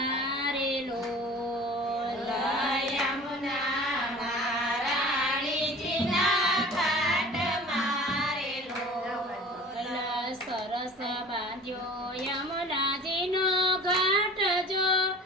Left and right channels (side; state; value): both; normal; correlation 0.43